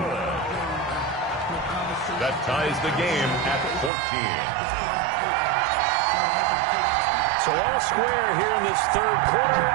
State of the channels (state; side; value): drops out; left; at 3.9 s